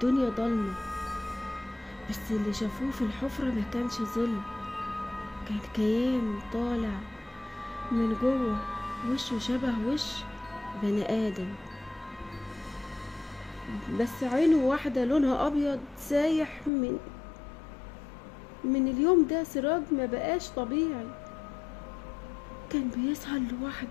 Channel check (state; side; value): drops out; right; at 16.7 s